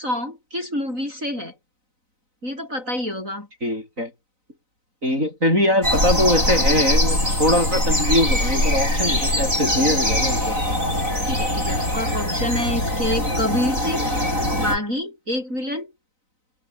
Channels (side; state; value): left; late; 3.9 ms